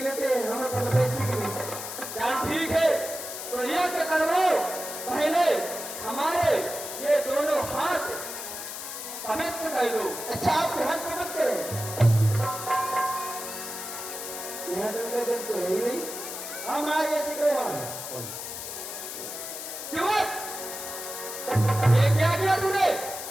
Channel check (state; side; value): noise; left; hiss, 8 dB below the sound